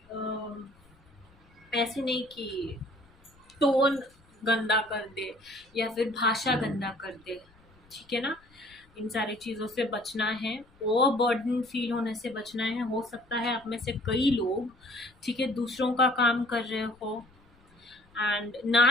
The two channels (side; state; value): left; noise; rumble, 30 dB below the sound